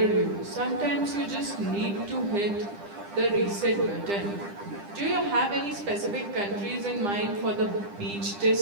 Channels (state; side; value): late; left; 10 ms